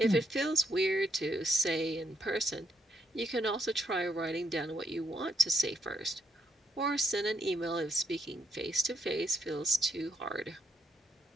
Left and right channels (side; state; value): both; normal; correlation 0.75